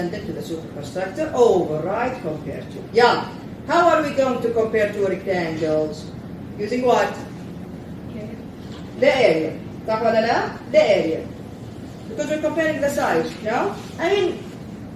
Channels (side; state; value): both; identical; correlation 1.00